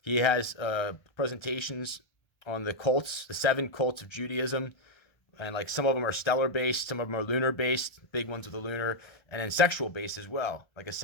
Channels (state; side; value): late; right; 1.3 ms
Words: He has presentations on the cults, the 7 cults of Judaism. And like some of them are stellar based, some of them are lunar based, big ones with the lunar, and then sexual based as well. Like I